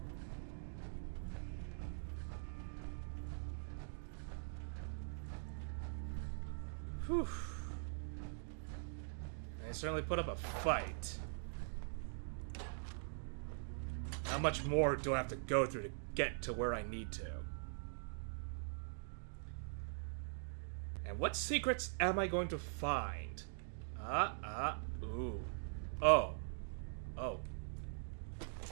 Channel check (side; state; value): left; silent; digital silence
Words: Whew. I certainly put up a fight. How much more do I have to go through to get to where I need to? And what secrets am I going to find? Ooh. Oh.